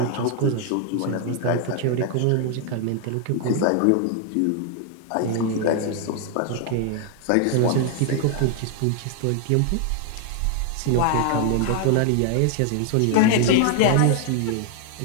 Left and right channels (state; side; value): different; both; correlation 0.00